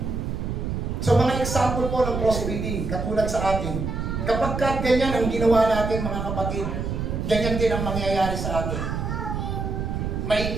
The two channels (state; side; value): noise; right; rumble, 3 dB below the sound